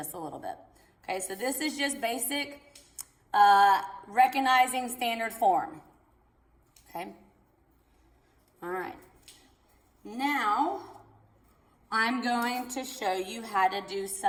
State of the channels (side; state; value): both; identical; correlation 1.00